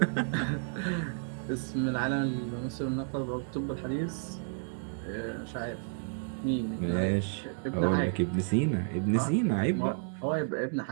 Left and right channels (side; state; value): left; silent; digital silence